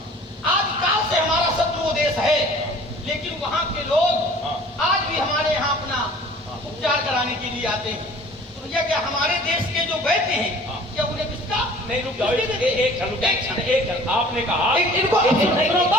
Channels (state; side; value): normal; both; correlation 0.48